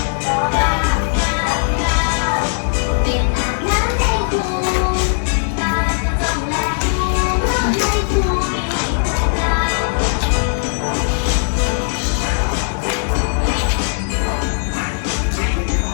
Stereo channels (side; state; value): right; silent; digital silence